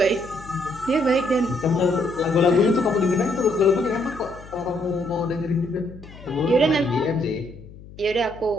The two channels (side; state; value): left; noise; hum, 18 dB below the sound